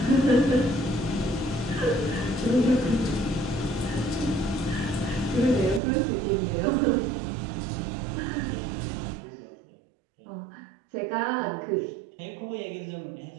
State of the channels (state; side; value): drops out; left; at 5.8 s